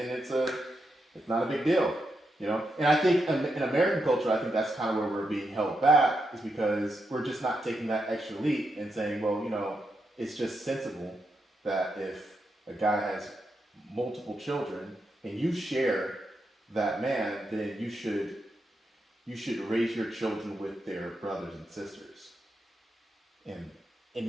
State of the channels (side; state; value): both; normal; correlation 0.84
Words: it's not a big deal, And I think in American culture, I think that's kind of where we're being held back, is because we're just not taking that extra leap and saying, well, it's just sensible that if a guy has multiple children and you share that man, then you should raise your children with their brothers and sisters, and